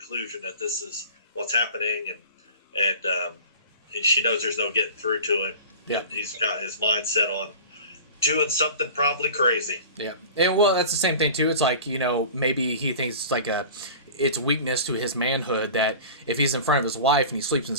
that this is what's happening, and she knows there's no getting through to him. Yeah, he's got his mind set on doing something probably crazy. Yeah, and well, that's the same thing too. It's like, maybe he thinks it's like it's weakness to his manhood that if he's in front of his wife and he sleeps in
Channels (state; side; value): inverted; both; correlation -0.39